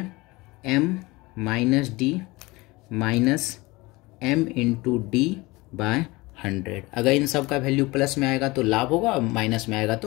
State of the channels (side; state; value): right; quieter; 22.4 dB